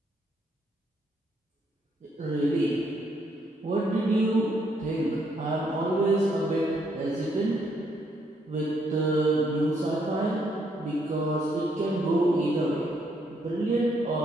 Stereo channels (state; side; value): normal; both; correlation 0.73